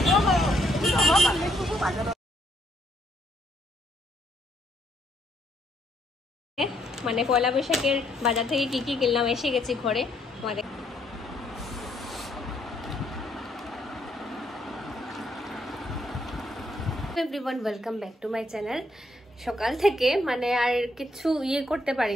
মানে পয়লা বৈশাখের বাজার থেকে কি কি কিনলাম, এসে গেছি ঘরে আমাদের। Everyone, welcome back to my channel. সকাল থেকে মানে আর কিছু করতে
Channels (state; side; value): normal; both; correlation 0.72